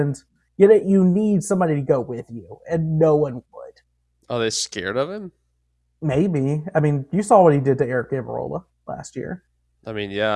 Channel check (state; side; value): identical; both; correlation 1.00